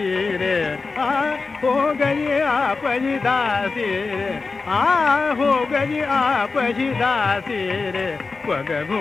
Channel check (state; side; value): quieter; right; 4.2 dB